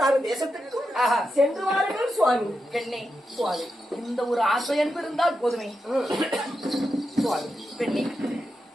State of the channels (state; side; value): normal; both; correlation 0.87